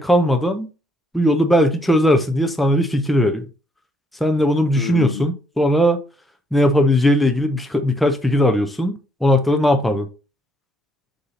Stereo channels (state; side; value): normal; both; correlation 0.71